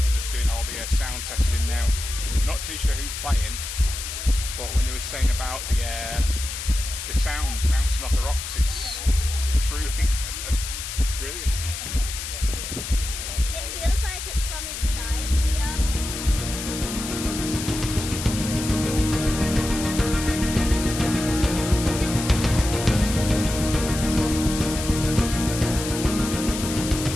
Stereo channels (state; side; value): noise; left; hiss, 7 dB below the sound